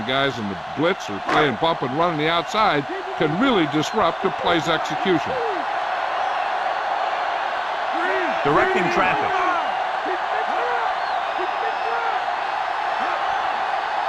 guys in the blitz or playing bump and run on the outside can really disrupt the play's execution. Directing traffic.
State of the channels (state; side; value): identical; both; correlation 1.00